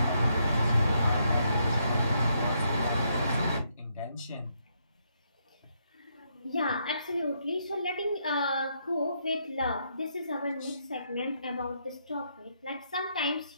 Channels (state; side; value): inverted; both; correlation -0.76